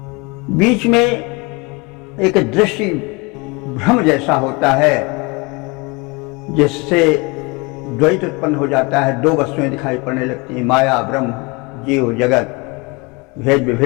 बीच में एक दृष्टि भ्रम जैसा होता है, जिससे द्वैत उत्पन्न हो जाता है। दो वस्तुएं दिखाई पड़ने लगती हैं, माया ब्रह्म, जीव जगत, भेद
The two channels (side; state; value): right; quieter; 26.8 dB